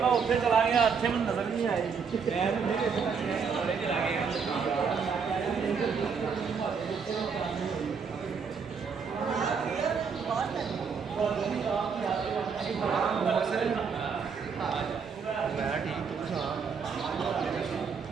ਉੱਥੇ ਚਲਾ ਗਿਆ ਇੱਥੇ ਮੈਨੂੰ ਨਜ਼ਰ ਨਹੀਂ ਆਈ ਮੈਂ ਠੀਕ ਤੂੰ ਸੁਣਾ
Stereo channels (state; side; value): quieter; left; 5.9 dB